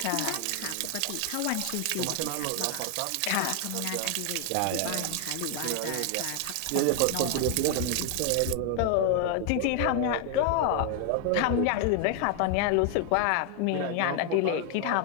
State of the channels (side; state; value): both; different; correlation 0.00